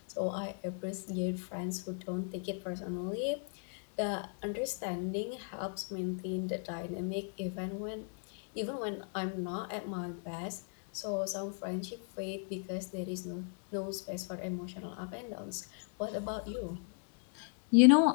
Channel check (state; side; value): silent; right; 53 dB below the other